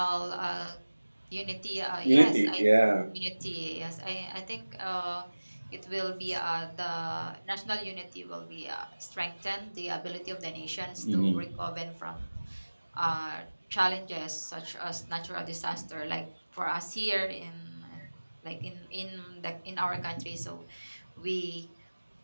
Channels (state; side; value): inverted; both; correlation -1.00